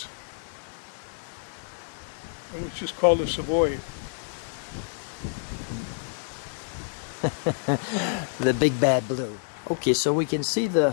And it's just called a Savoy. The big bad blue. Okay, so we can see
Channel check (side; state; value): right; silent; digital silence